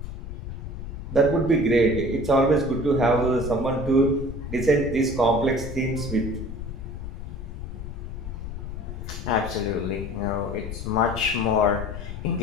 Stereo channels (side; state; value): left; noise; rumble, 8 dB below the sound